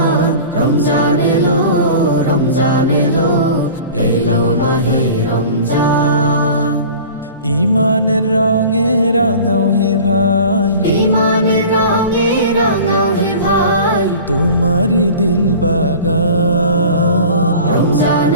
রমজান এলো, রমজান এলো, এলো মাহে রমজান। ইমানের রঙে রাঙাও হে ভাই, ইমানের রঙে রাঙাও হে ভাই, তোমারি দিল বাগান। রমজান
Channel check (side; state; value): both; inverted; correlation -0.40